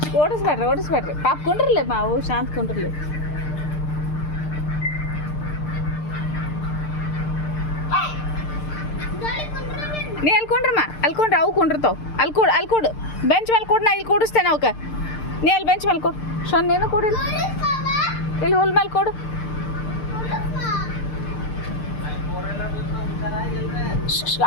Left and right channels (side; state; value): right; late; 6.7 ms